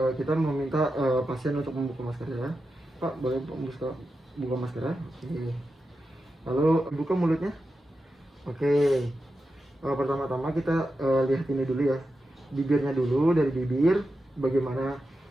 Kita meminta pasien untuk membuka masker ya. Pak, boleh buka masker ya? Oke. Lalu buka mulutnya. Oke. Pertama-tama kita lihat ini dulu ya. Bibirnya dulu, dari bibir bagaimana,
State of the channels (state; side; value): normal; both; correlation 0.89